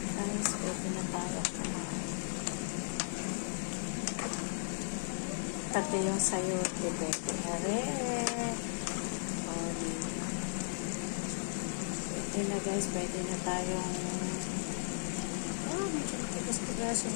guys. Pwede na tayo kumain. Pati yung sayote, pwede na rin. Oh, diba? Pwede na, guys. Pwede na tayong medyo tigas-tigasin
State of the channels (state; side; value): silent; right; digital silence